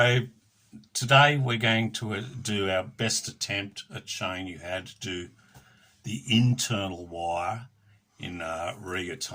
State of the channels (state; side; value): identical; both; correlation 1.00